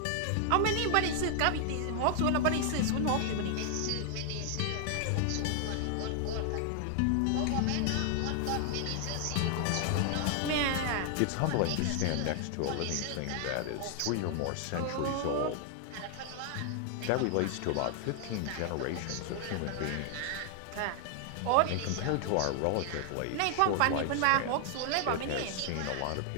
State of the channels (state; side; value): different; both; correlation 0.00